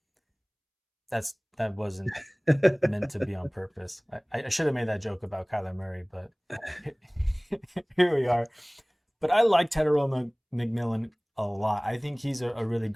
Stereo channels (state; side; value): identical; both; correlation 1.00